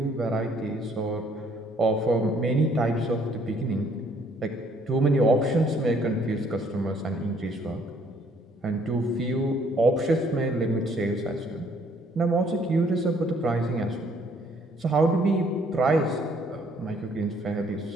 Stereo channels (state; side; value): normal; both; correlation 0.64